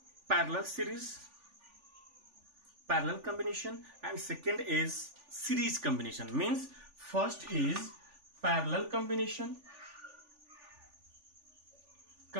parallel combination, and second is series combination. Means first is parallel combination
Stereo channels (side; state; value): left; late; 3.4 ms